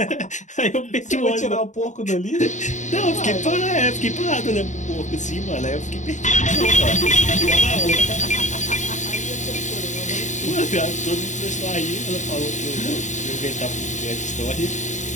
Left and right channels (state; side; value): late; right; 0.35 ms